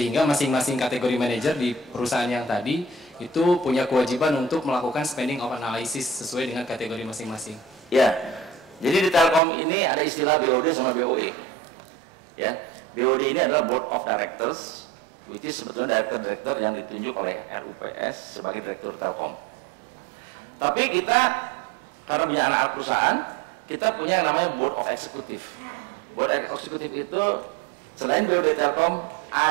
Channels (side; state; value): left; drops out; at 9.4 s